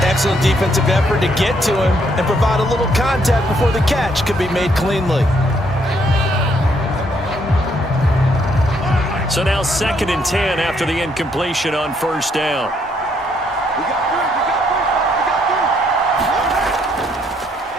Excellent defensive effort to get to him and provide a little contact before the catch could be made cleanly. So now 2nd and 10 after the incompletion on first down.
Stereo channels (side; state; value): both; normal; correlation 0.71